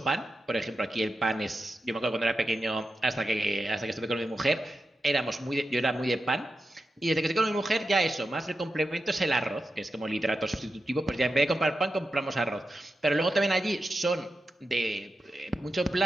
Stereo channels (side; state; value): both; normal; correlation 0.90